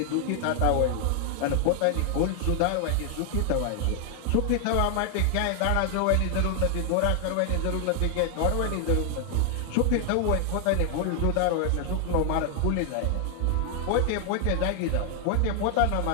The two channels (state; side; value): different; both; correlation 0.00